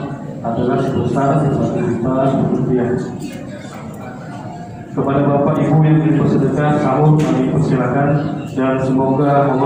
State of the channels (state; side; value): identical; both; correlation 1.00